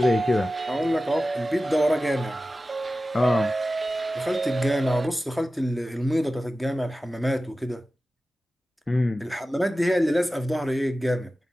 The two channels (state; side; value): normal; both; correlation 0.95